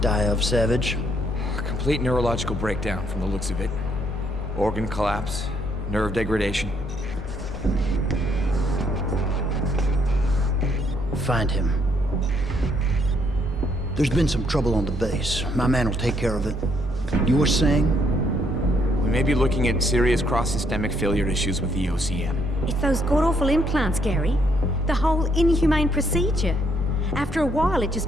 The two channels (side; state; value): both; normal; correlation 0.71